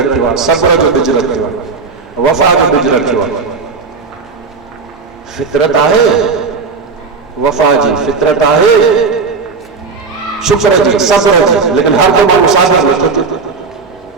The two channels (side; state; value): left; quieter; 4.7 dB